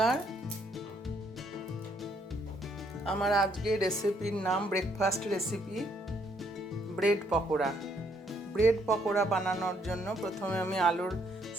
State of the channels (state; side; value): normal; both; correlation 0.70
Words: আমার আজকে রেসিপির নাম breakfast recipe bread pakora. Bread pakora বানানোর জন্য প্রথমে আমি আলুর